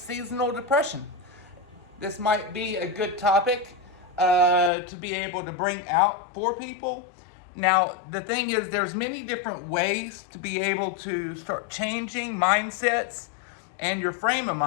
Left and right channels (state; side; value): drops out; right; at 4.7 s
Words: depression. This might be a good topic to be able to bring out for people. Now, the thing is, there's many different ways to be able to start changing mindsets and your frame of